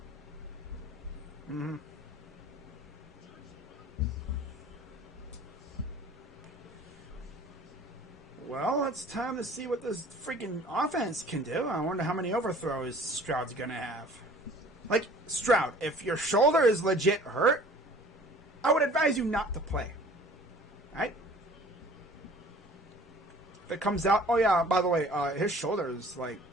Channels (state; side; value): normal; both; correlation 0.49